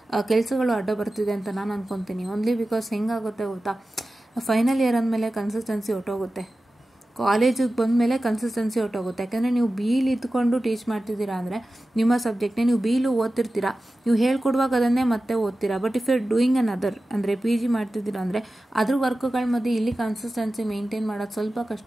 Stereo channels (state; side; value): normal; both; correlation 0.95